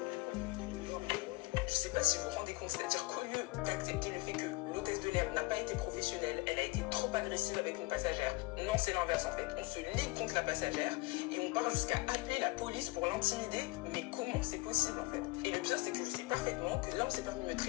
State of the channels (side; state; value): right; quieter; 22.6 dB